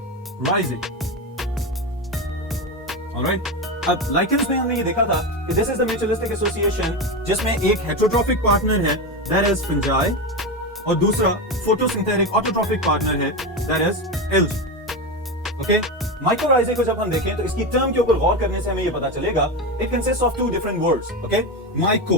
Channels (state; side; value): normal; both; correlation 0.17